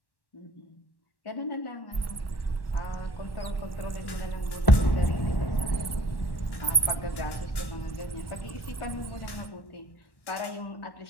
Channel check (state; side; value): late; right; 1.1 ms